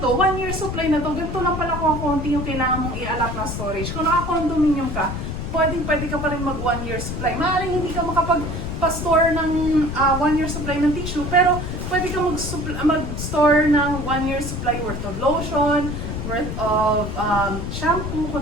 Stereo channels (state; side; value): noise; left; rumble, 5 dB below the sound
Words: 1 year supply na to, ganito lang pala kung konti yung kailangan mong i-allot na storage. Kung naka-condominium ka, pwede ka pa rin mag 1 year supply. Maaaring hindi ka makapag-store ng 1 year supply ng tissue, pero pwede ka mag-store ng 1 year supply worth of lotion, worth of shampoo,